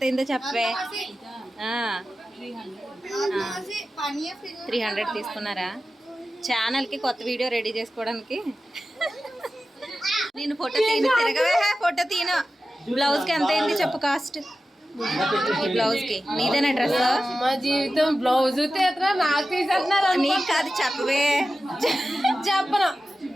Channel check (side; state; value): both; normal; correlation 0.93